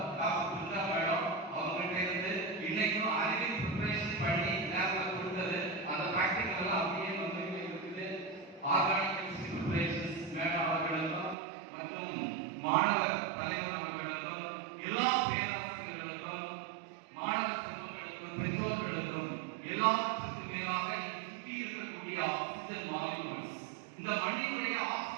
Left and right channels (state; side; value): drops out; left; at 11.4 s